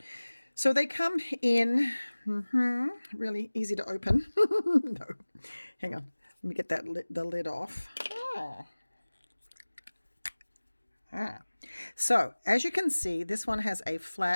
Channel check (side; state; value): both; inverted; correlation -1.00